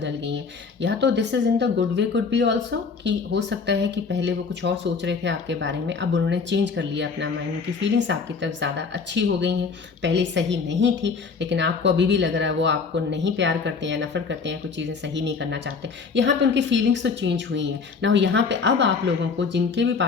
गई हैं। या तो this is in the good way, could be also कि हो सकता है कि पहले वो कुछ और सोच रहे थे आपके बारे में, अब उन्होंने चेंज कर लिया अपना माइंड, उनकी फीलिंग्स आपकी तरफ ज़्यादा अच्छी हो गई हैं। पहले सही नहीं थी, लेकिन आपको अभी भी लग रहा है वो आपको नहीं प्यार करते हैं, नफरत करते हैं, कुछ चीज़ें सही नहीं करना चाहते। यहाँ पे उनकी फीलिंग्स तो चेंज हुई हैं ना। यहाँ पे अब आप लोगों को, जिनके भी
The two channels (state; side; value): quieter; right; 5.1 dB